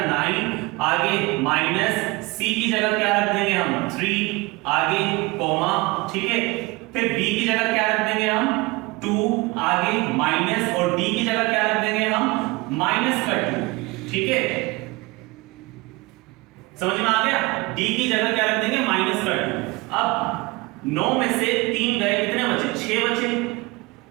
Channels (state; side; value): quieter; left; 23.6 dB